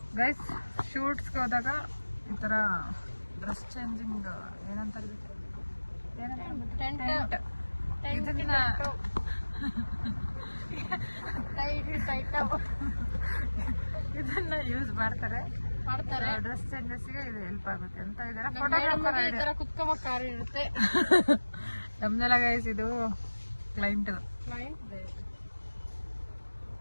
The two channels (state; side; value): inverted; both; correlation -1.00